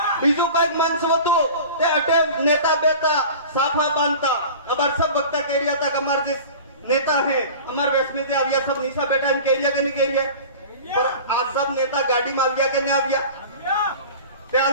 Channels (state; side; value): inverted; both; correlation -0.38